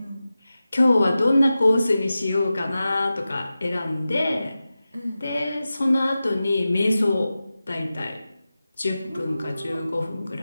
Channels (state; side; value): inverted; both; correlation -0.94